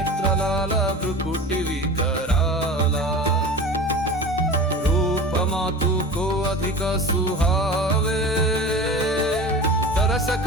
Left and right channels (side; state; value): both; normal; correlation 0.34